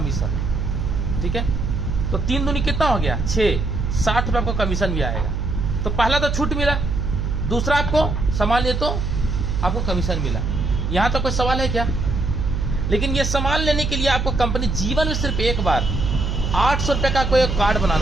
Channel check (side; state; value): right; noise; hum, 1 dB below the sound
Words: ठीक है। तो 3 दूनी कितना हो गया? 6, 60 रुपये आपको कमीशन भी आएगा। तो पहला तो छूट मिला, दूसरा आपको सामान लिए तो आपको कमीशन मिला। यहाँ तो कोई सवाल है क्या? लेकिन ये सामान लेने के लिए आपको कंपनी जीवन में सिर्फ एक बार 800 रुपये का कोई कार्ड